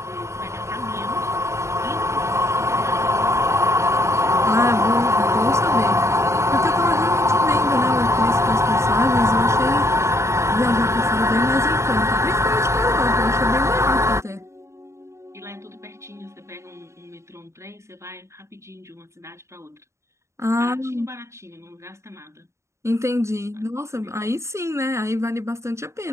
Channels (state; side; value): late; left; 0.14 ms